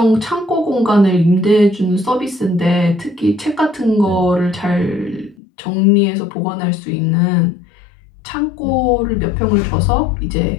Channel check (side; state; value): right; drops out; at 5.4 s